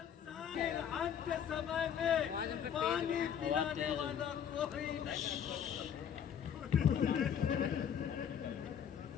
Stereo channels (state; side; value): quieter; right; 8.6 dB